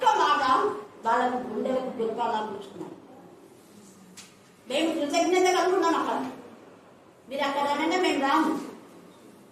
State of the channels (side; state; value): both; identical; correlation 1.00